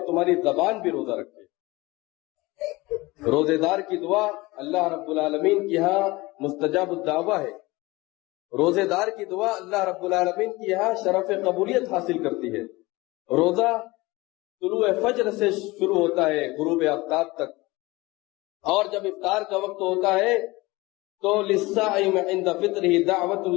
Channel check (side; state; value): right; quieter; 21.7 dB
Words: تمہاری زبان بھی روزہ رکھیں۔ روزے دار کی دعا اللہ رب العالمین کی یہاں مستجاب الدعوہ ہے۔ روزے دار کی دعا اللہ رب العالمین کی یہاں شرف قبولیت حاصل کرتی ہے۔ روزہ طلوع فجر سے شروع ہوتا ہے غروب آفتاب تک، اور جب افطار کا وقت ہوتا ہے تو للصائم عند فطرہ دعوت